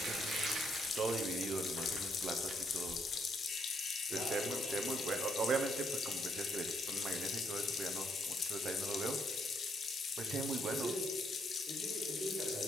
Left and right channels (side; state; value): both; normal; correlation 0.73